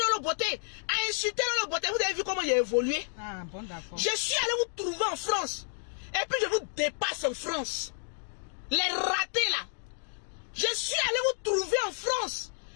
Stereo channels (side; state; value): right; silent; digital silence